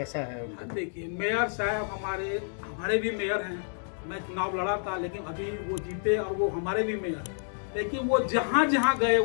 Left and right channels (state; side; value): silent; right; 58 dB below the other